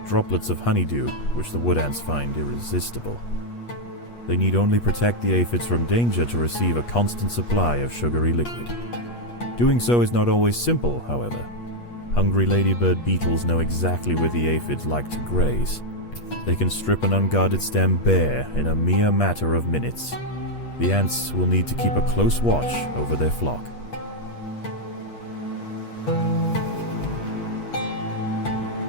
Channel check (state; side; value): late; right; 8.4 ms